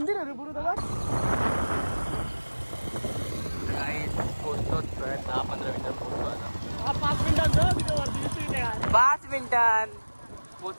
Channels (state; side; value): inverted; both; correlation -1.00